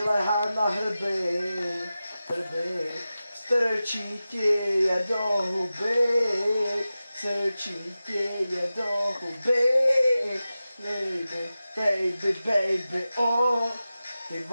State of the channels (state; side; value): inverted; both; correlation -0.94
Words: lehá na hrby, strčí ti je do huby, baby, oh, ty